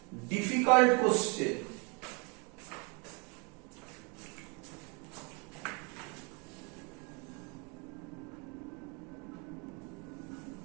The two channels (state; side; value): quieter; left; 31.0 dB